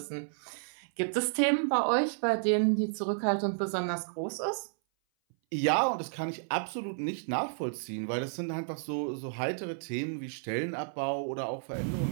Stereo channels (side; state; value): left; silent; 57 dB below the other